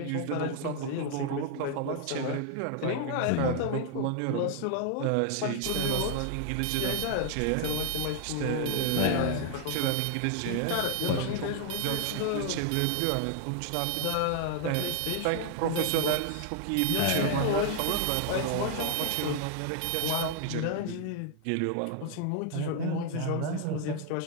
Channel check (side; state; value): both; different; correlation 0.00